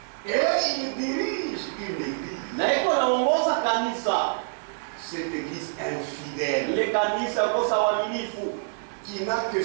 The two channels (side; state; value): left; silent; digital silence